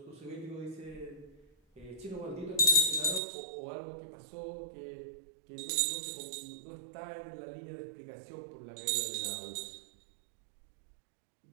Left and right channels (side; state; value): left; drops out; at 3.2 s